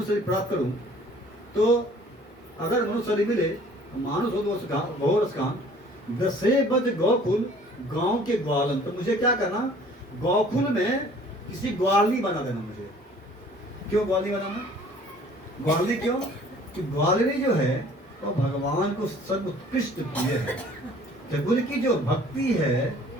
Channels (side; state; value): both; normal; correlation 0.53